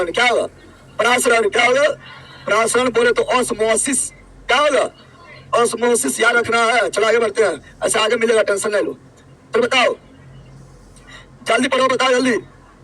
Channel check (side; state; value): both; identical; correlation 1.00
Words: क्या होगा? परासरण क्या होगा? परासरण बोले तो ऑस्मोसिस, क्या होगा? ऑस्मोसिस याद रखना है। चलो आगे बढ़ते हैं, ऐसे आगे मिलेगा, टेंशन नहीं लो। तो बताओ, जल्दी पढ़ो, बताओ जल्दी,